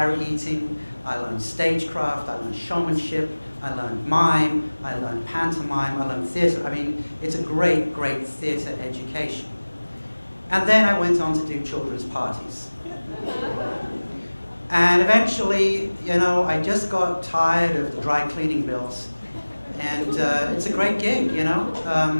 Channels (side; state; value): both; inverted; correlation -1.00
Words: eating, I learned stagecraft, I learned showmanship, I learned mime, I learned pantomime, I learned theatre. I mean, it's a great, great theatre education. And then I went on to do children's parties. And eventually, you know, I just got tired of the dry cleaning bills. And it's a great gig, you know.